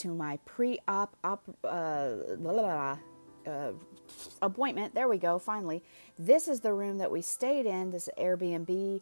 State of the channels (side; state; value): both; inverted; correlation -1.00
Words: my pre-op appointment. There we go, finally. This is the room that we stayed in, this Airbnb.